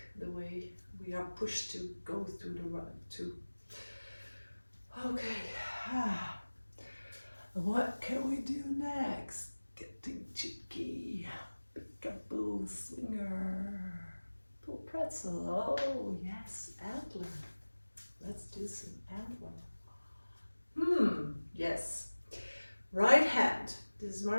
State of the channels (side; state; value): both; inverted; correlation -1.00